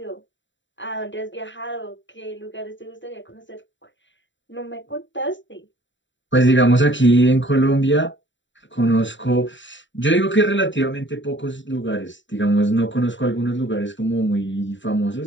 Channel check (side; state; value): right; late; 0.54 ms